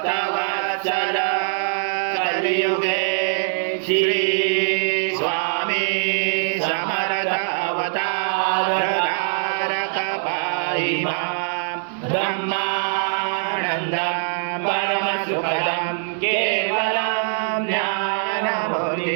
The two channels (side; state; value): left; silent; digital silence